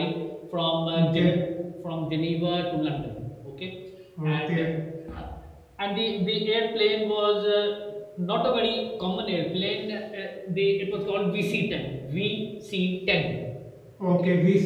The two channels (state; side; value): identical; both; correlation 1.00